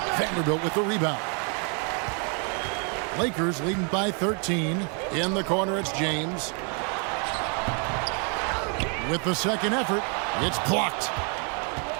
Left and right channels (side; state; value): left; quieter; 38.1 dB